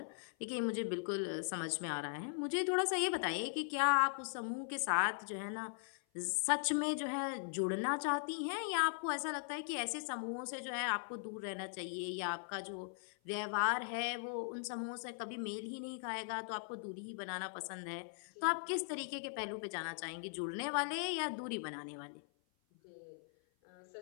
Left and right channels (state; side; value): silent; right; 51 dB below the other